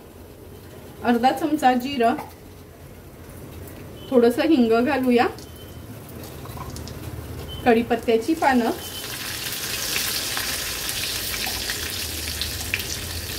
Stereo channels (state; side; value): identical; both; correlation 1.00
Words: अर्धा चमचा जिरं, थोडंसं हिंग घालूया, कढीपत्त्याची पानं,